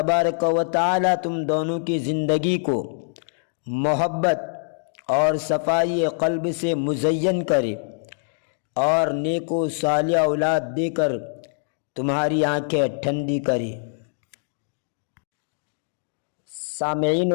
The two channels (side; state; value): right; silent; digital silence